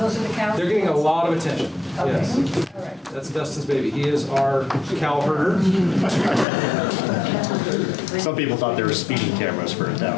are the cows? They're getting a lot of attention. Okay. Yes. All right. That's Dustin's baby. He is our cow herder. Some people thought they were speeding cameras for it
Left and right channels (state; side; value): drops out; right; at 6.5 s